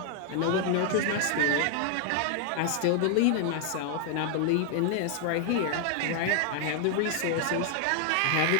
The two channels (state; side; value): different; both; correlation 0.00